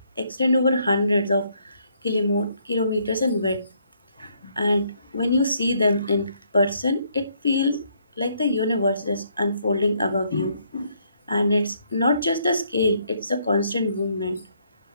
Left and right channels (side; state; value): both; inverted; correlation -0.70